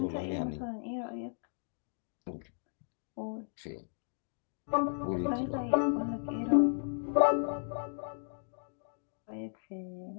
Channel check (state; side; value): silent; right; digital silence